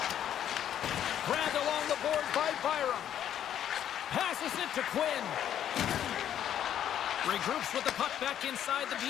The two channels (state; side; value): quieter; right; 10.3 dB